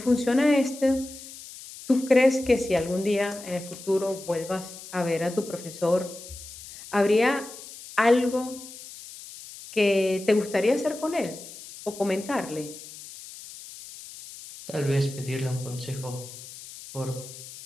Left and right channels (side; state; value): left; noise; hiss, 15 dB below the sound